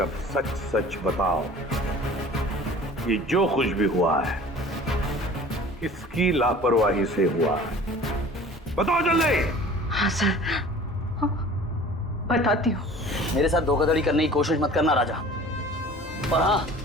अब सच सच बताओ, ये जो कुछ भी हुआ है किसकी लापरवाही से हुआ है? बताओ जल्दी। हाँ सर, बताती हूँ। मेरे साथ धोखाधड़ी करने की कोशिश मत करना राजा। और हाँ,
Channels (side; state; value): both; normal; correlation 0.45